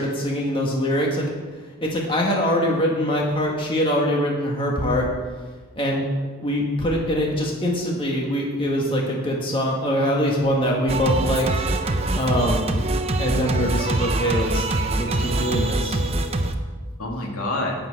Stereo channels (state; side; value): normal; both; correlation 0.48